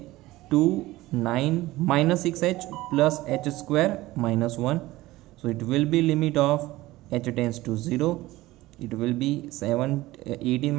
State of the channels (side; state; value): left; quieter; 18.0 dB